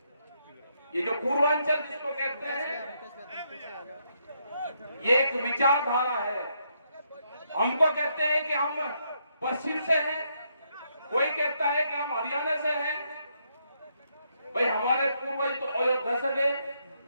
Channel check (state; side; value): inverted; both; correlation -0.76